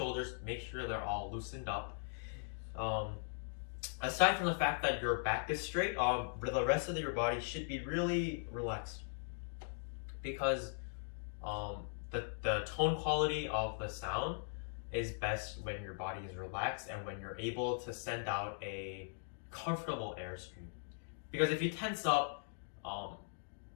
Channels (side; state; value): right; silent; digital silence